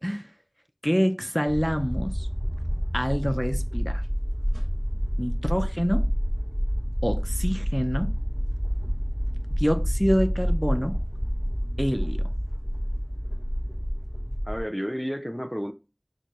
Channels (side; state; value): both; identical; correlation 1.00